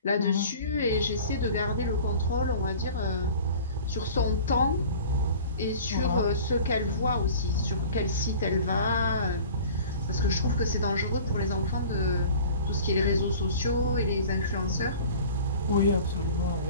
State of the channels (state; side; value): inverted; both; correlation -0.43